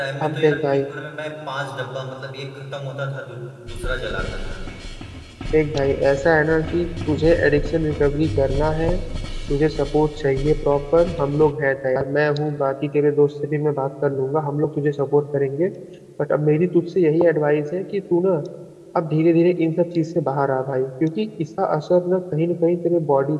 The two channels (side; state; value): both; identical; correlation 1.00